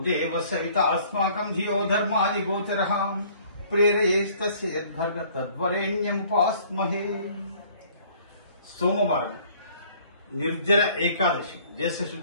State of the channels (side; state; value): both; inverted; correlation -0.56